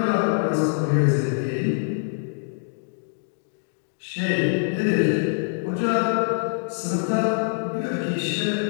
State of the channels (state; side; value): silent; right; digital silence